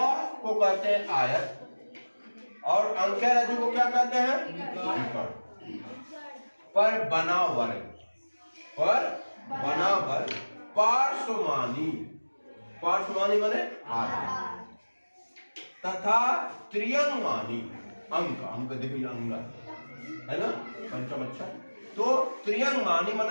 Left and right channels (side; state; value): both; inverted; correlation -1.00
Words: को कहते हैं आयत, और अंक्या रज्जु को क्या कहते हैं? विकर्ण। पर बना वर्ग पार्श्वमानी माने आधा, तथा त्रियंगमानी अंक देखिए, अंग है ना, पंचम अक्षर। तो त्रियंगमानी